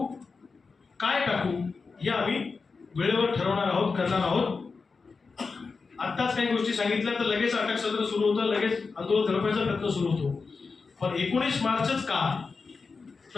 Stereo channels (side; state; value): right; quieter; 4.6 dB